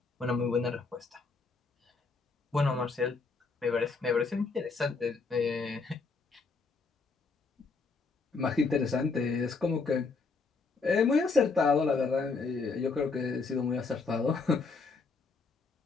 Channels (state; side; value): quieter; right; 4.3 dB